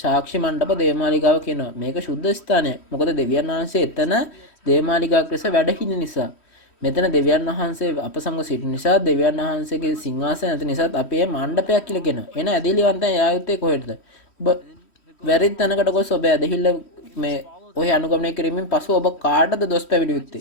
මණ්ඩප දේවමාලිගාව කියනවා. මේක සුද්ධ ස්ථානය. මොකද දෙවියන් වහන්සේ එතන දේවමාලිගාවක් ලෙස වැඩ හිඳින නිසා. මෙතන දෙවියන් වහන්සේ අප සමග සිටින නිසා දෙවියන් වහන්සේගේ සිංහාසනය නැති නිසාත් අපි මේ මණ්ඩපයක් කියලා කියනවා. එන ඇදහිලිවන්තයන් යායුත්තේ කොහෙටද? ඔබ වැරදි තැනකට ගොස් ඔබ ඇදහිල්ල මේ ඔය අනුගමනය කිරීමෙන් පසු ඔබ කාටද දොස් පැවිදි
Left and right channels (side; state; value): right; late; 3.1 ms